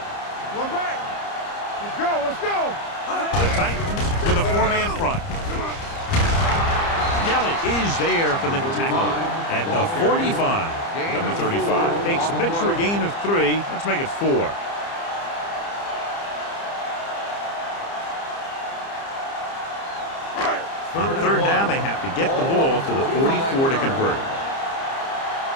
One back. Let's go. The Titans with a four-man front. Kelly is there for the tackle at the 45. Number 35 takes the pitch for a gain of 3. Let's make it 4. On third down, they have to get the ball to the 44 to convert.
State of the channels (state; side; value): late; right; 30 ms